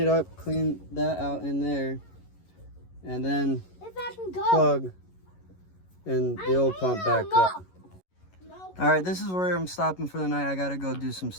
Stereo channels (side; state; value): right; late; 11 ms